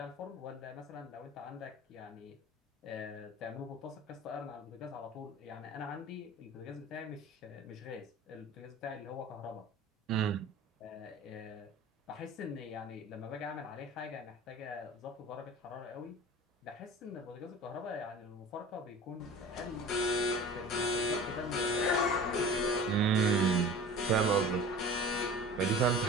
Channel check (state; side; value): normal; both; correlation 0.39